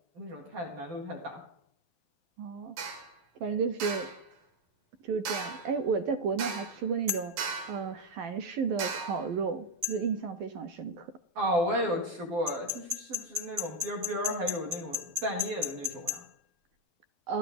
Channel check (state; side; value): late; left; 12 ms